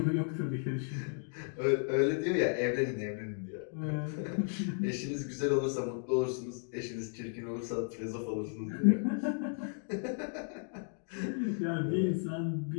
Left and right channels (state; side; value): silent; right; 55 dB below the other